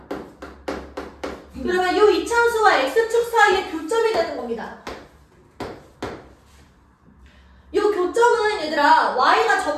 그러면 이 2차 함수와 x축 사이의 교점이 되는 겁니다. 이 교점은 얘들아 y가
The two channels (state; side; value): identical; both; correlation 1.00